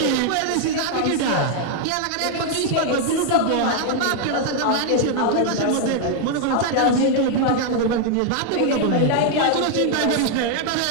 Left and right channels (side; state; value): both; different; correlation 0.00